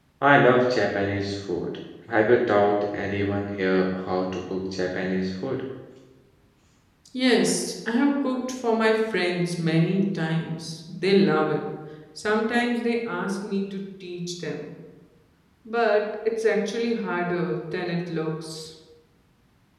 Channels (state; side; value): identical; both; correlation 1.00